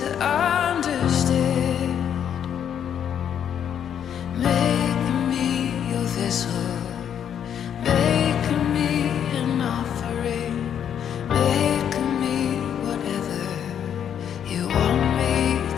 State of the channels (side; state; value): right; quieter; 8.9 dB